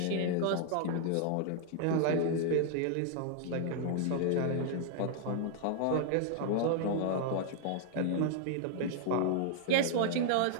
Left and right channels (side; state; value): both; different; correlation 0.00